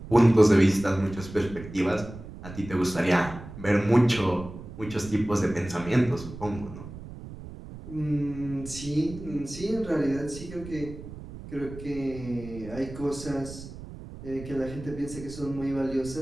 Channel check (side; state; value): right; noise; rumble, 13 dB below the sound